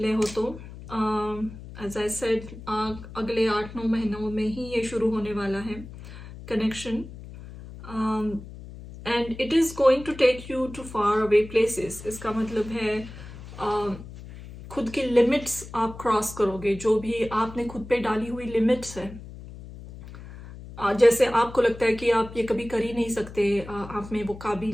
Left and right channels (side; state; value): left; noise; hum, 14 dB below the sound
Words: हो तो एज आई सेड, अगले 8-9 महीनों में ही ये शुरू होने वाला है connection. And it is going to take you to far away places. इसका मतलब है खुद की लिमिट्स आप क्रॉस करोगे, जो भी आपने खुद पे डाली हुई लिमिट्स है. जैसे आपको लगता है कि आप ये कभी कर ही नहीं सकते, आप में वो